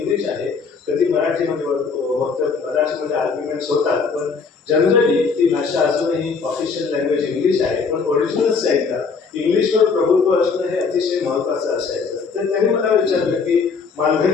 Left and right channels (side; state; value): right; quieter; 5.1 dB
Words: आहे. कधी मराठीमध्ये फक्त मराठीमध्ये आर्ग्युमेंट्स होतात पण जनरली ती भाषा अजूनही ऑफिशियल लँग्वेज इंग्लिश आहे. पण ओरिजिनल साईडला इंग्लिशवर प्रभुत्व असणं हे अतिशय महत्त्वाचं असायचं. तर त्यांनी मला विचारलं की